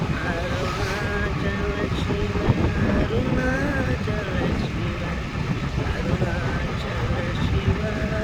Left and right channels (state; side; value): identical; both; correlation 1.00